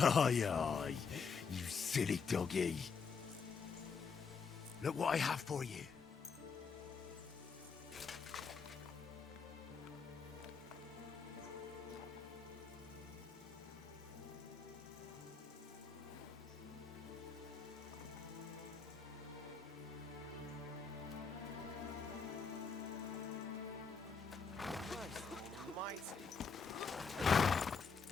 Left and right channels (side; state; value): right; quieter; 5.4 dB